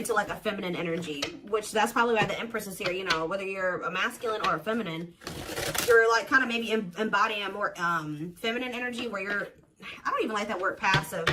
like a feminine energy, which that's probably why the Empress is here. You know, whether you're a masculine or a feminine, you're like kind of maybe embodying a more feminine energy where you're, I don't even like that word passive,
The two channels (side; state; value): both; identical; correlation 1.00